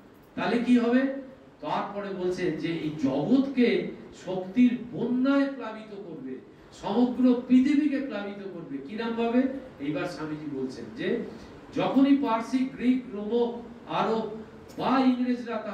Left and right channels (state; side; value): identical; both; correlation 1.00